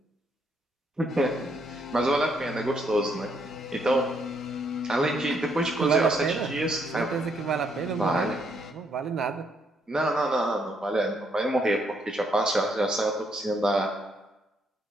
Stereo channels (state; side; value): normal; both; correlation 0.73